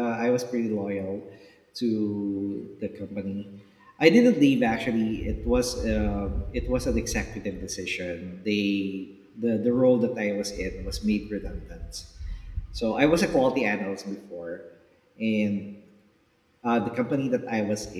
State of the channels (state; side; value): identical; both; correlation 1.00